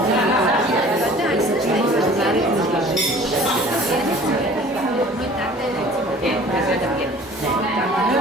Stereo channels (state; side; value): normal; both; correlation 0.48